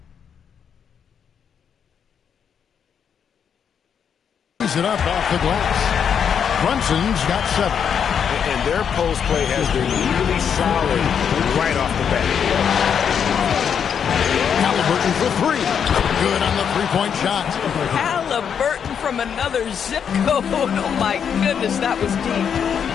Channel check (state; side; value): quieter; right; 7.6 dB